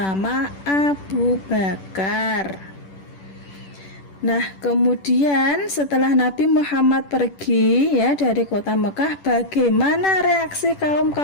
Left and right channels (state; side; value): late; right; 10 ms